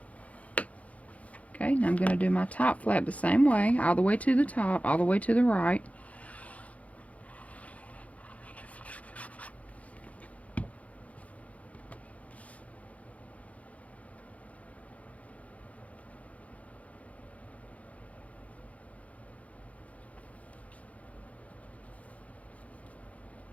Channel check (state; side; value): late; right; 0.067 ms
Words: Okay, now I'm going to do my top flap the same way, all the way to the top, all the way to the right.